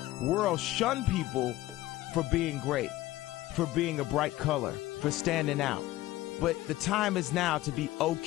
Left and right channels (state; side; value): quieter; right; 16.6 dB